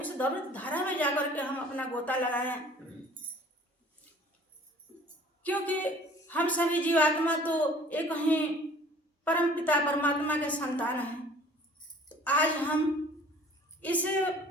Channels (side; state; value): both; normal; correlation 0.50